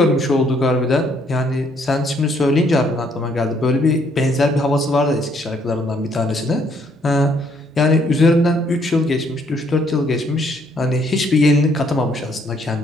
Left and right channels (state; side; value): normal; both; correlation 0.68